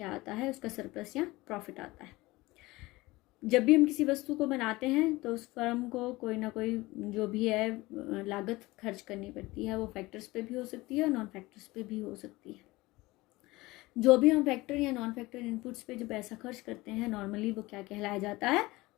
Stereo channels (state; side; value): quieter; right; 20.6 dB